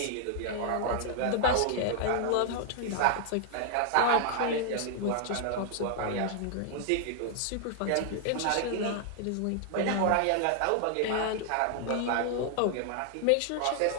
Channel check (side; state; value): both; different; correlation 0.00